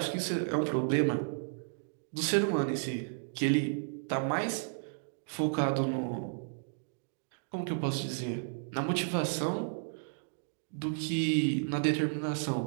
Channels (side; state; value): left; silent; digital silence